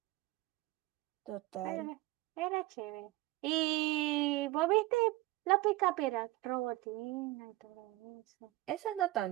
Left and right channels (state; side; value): quieter; left; 19.0 dB